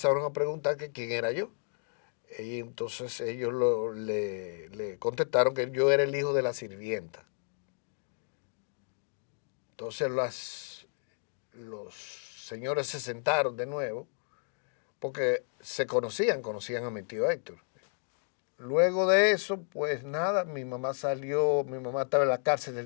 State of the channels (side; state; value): right; silent; 56 dB below the other